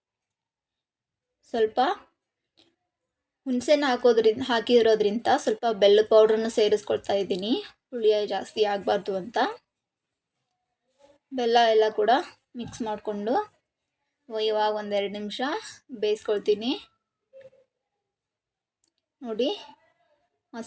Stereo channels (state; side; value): identical; both; correlation 1.00